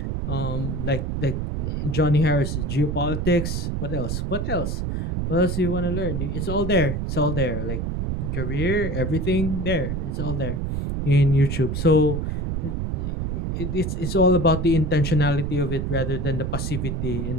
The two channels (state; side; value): noise; right; rumble, 2 dB below the sound